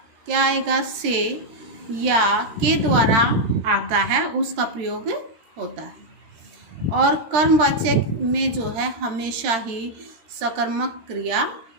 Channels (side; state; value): left; late; 13 ms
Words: क्या आएगा? से या के द्वारा आता है, उसका प्रयोग होता है। और कर्मवाच्य में जो है हमेशा ही सकर्मक क्रिया